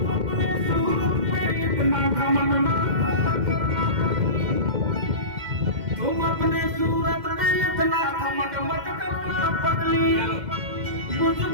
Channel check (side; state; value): left; late; 2.1 ms